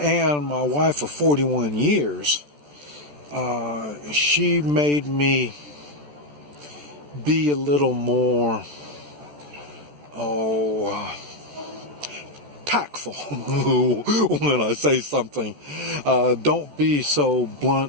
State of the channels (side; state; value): left; late; 14 ms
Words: my wife of 41 years, she made me be a little more, tactful when I say something. Don't be so